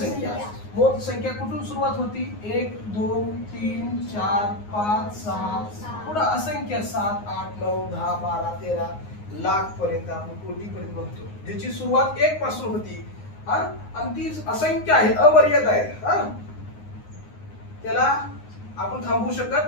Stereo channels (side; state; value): right; late; 9.6 ms